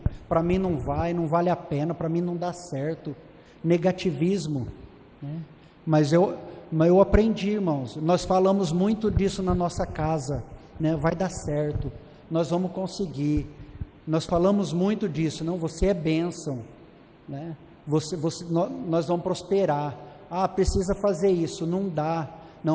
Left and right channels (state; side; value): identical; both; correlation 1.00